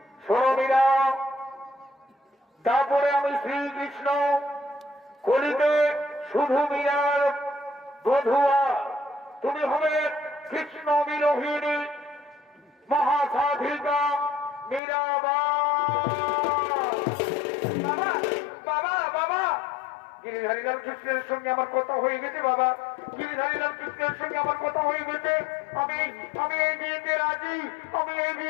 শোনো মীরা, তারপরে আমি শ্রীকৃষ্ণ কলিতে শুধু মীরার বধুয়া, তুমি হবে কৃষ্ণ বিরোহিণী মহাসাধিকা মীরাবাই। বাবা বাবা বাবা গিরিধারীলাল কৃষ্ণের সঙ্গে আমার কথা হয়ে গেছে বাবা, গিরিধারীলাল কৃষ্ণের সঙ্গে আমার কথা হয়ে গেছে। আমি আমি এই বিয়েতে রাজি, আমি এই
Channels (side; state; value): right; drops out; at 14.8 s